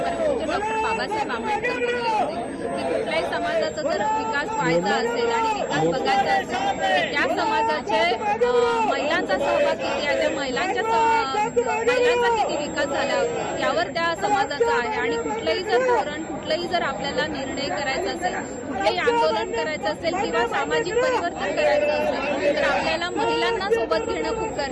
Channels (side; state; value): both; identical; correlation 1.00